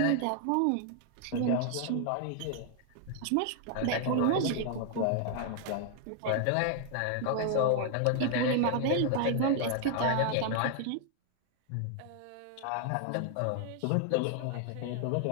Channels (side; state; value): both; different; correlation 0.00